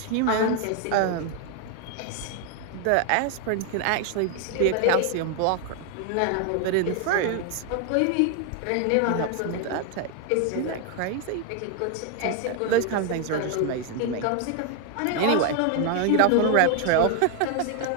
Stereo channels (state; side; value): different; both; correlation 0.00